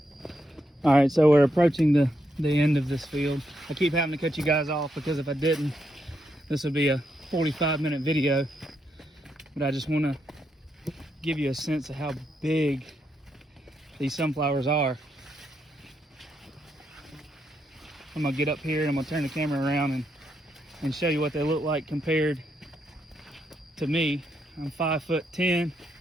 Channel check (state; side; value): normal; both; correlation 0.80